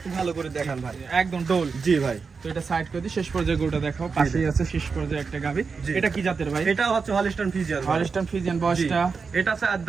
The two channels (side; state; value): left; quieter; 5.1 dB